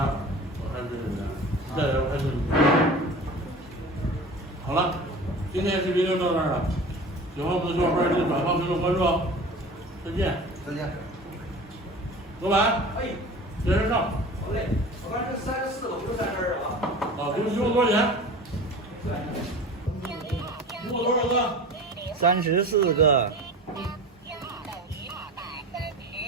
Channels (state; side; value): normal; both; correlation 0.37